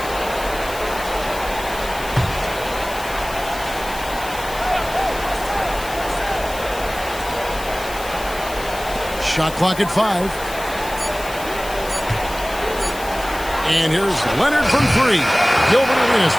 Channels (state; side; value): noise; left; hiss, 14 dB below the sound